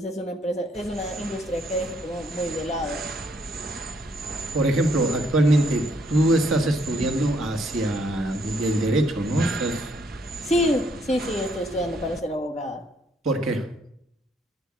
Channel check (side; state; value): both; normal; correlation 0.70